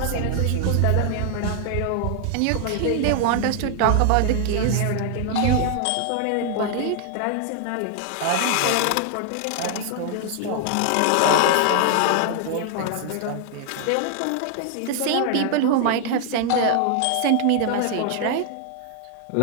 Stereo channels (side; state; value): both; different; correlation 0.00